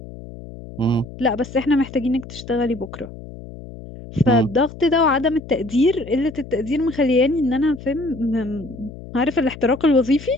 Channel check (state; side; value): noise; left; hum, 15 dB below the sound